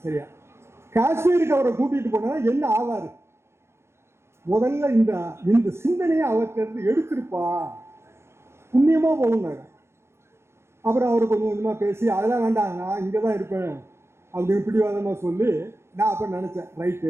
சரியா, காஷ்மீருக்கு அவரை கூட்டிட்டு போனா என்ன ஆவாரு, முதல்ல இந்த சிந்தனையை அவர்கிட்ட இருந்து எடுத்திருப்பா, புண்ணியமா போகுனாங்க. அப்புறம் அவர் கொஞ்சம் கொஞ்சமா பேசி, அதெல்லாம் வேண்டாம் நான் இங்கே தான் இருப்பேன் அப்படின்னு பிடிவாதமாக சொல்லி, நான் அப்போ நினச்சேன்,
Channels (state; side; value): late; left; 0.13 ms